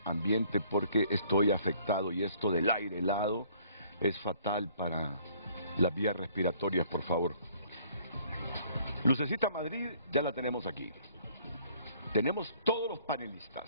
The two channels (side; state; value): both; inverted; correlation -0.60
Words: ambiente porque estoy afectado y esto del aire helado es fatal para las vías respiratorias, por favor. Lucecita Madrid ya la tenemos aquí. Tenemos todos los panelistas.